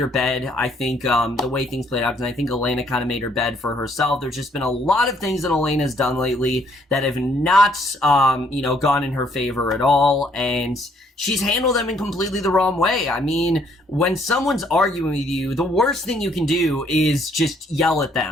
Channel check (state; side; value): normal; both; correlation 0.66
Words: bed. I think, the way things played out, and I think Elena kind of made her bed for herself. There's just been a lot of things that Elena's done lately that have not, you know, gone in her favor at all, and she's handled them in completely the wrong way. I mean, when someone's arguing with you, the worst thing you can do is just yell at